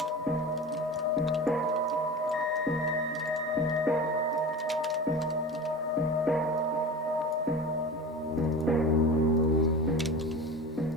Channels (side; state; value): both; normal; correlation 0.32